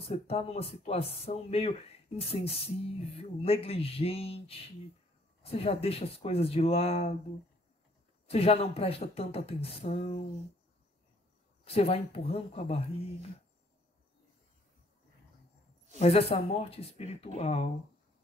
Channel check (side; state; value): both; normal; correlation 0.63